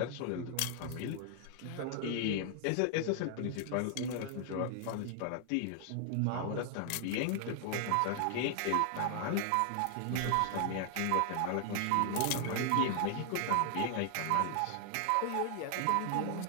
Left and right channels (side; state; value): both; different; correlation 0.00